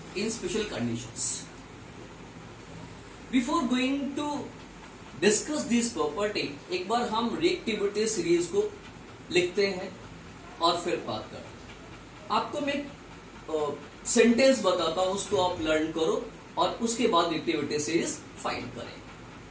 in special conditions. Before going to discuss this property, एक बार हम reactivity series को लिखते हैं और फिर बात करते हैं. आपको मैं सेंटेंस बताता हूं, उसको आप लर्न करो और उसके बाद रिएक्टिविटी सीरीज फाइंड करें.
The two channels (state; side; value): identical; both; correlation 1.00